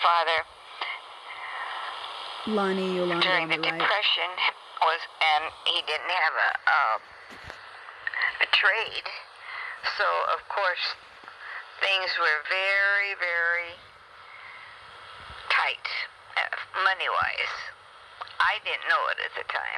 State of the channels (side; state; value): both; identical; correlation 1.00